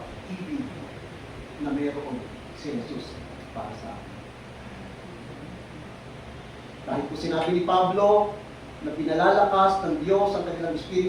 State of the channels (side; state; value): both; identical; correlation 1.00